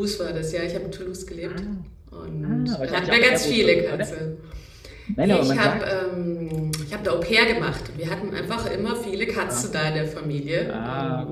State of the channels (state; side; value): identical; both; correlation 1.00